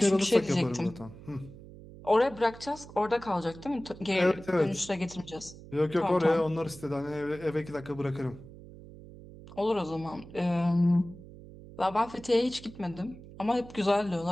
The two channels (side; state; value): right; noise; hum, 17 dB below the sound